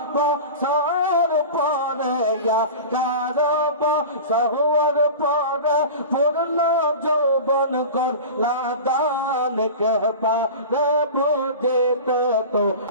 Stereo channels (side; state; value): both; inverted; correlation -0.32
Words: বছর পরে তার বছর পরে পূর্ণ যৌবন করলা দান কে পারে বুঝিতে তো